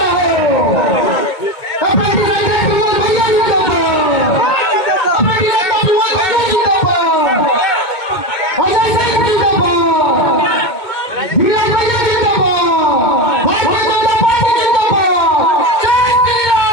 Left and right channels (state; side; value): late; right; 2.2 ms